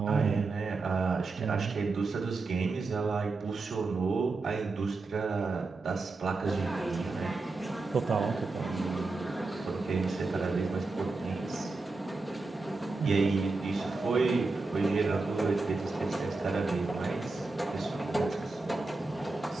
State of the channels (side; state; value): left; quieter; 3.7 dB